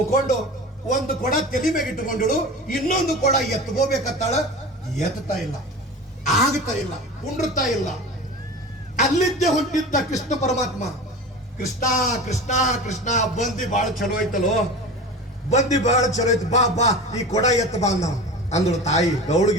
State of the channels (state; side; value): normal; both; correlation 0.32